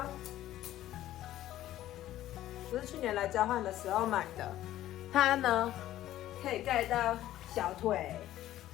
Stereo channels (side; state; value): right; quieter; 13.6 dB